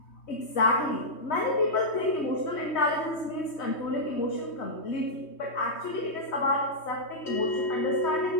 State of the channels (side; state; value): right; late; 3.2 ms